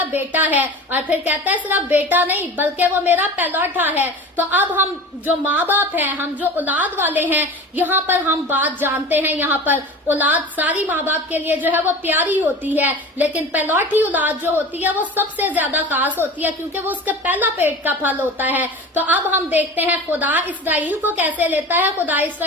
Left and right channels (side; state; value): both; normal; correlation 0.34